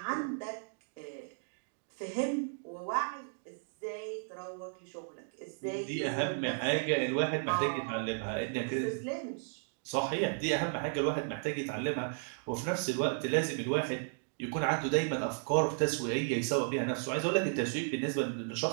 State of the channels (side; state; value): left; silent; digital silence